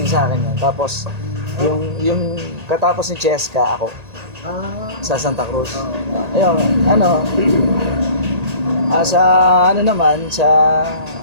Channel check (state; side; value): late; left; 1.8 ms